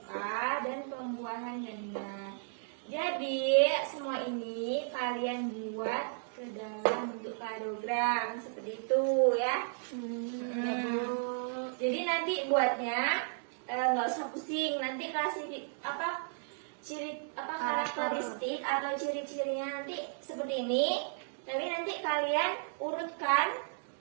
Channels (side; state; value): left; silent; digital silence